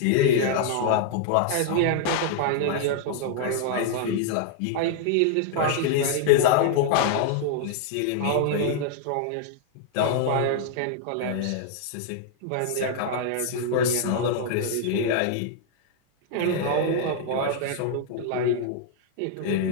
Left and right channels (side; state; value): both; different; correlation -0.01